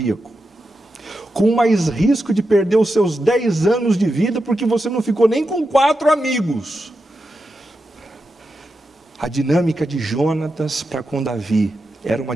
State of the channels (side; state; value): both; normal; correlation 0.88